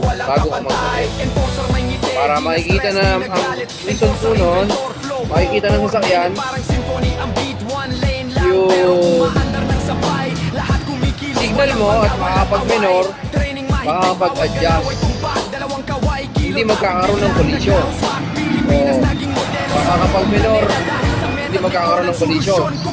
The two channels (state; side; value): identical; both; correlation 1.00